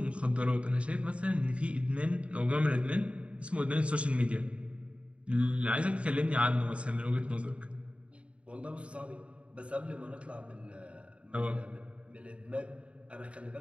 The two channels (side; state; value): left; late; 0.061 ms